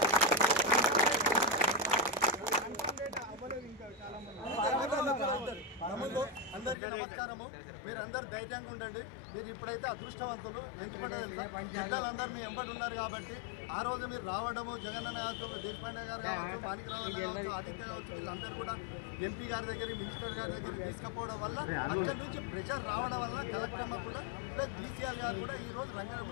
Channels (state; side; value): drops out; right; at 6.8 s